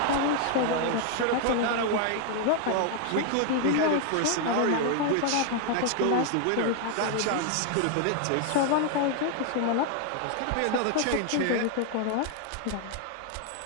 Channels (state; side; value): different; both; correlation 0.00